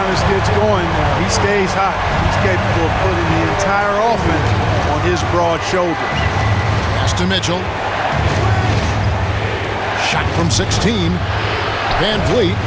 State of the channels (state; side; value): identical; both; correlation 1.00